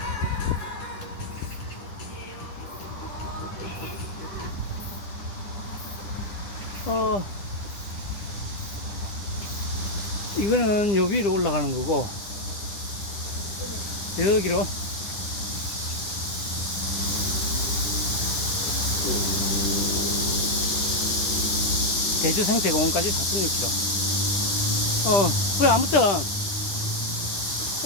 이거는 요 위로 올라가는 거고 여기로 대주 생태공원까지 4.6km. 그래 아무튼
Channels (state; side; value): late; right; 9.8 ms